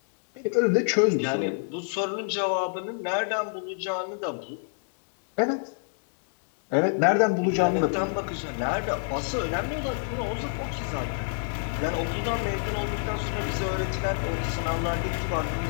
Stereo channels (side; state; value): right; silent; 60 dB below the other